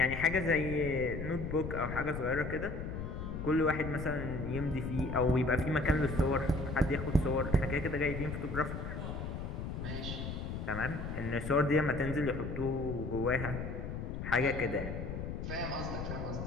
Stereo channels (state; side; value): noise; left; rumble, 5 dB below the sound